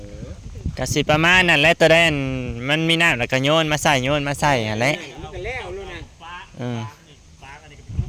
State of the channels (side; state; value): both; identical; correlation 1.00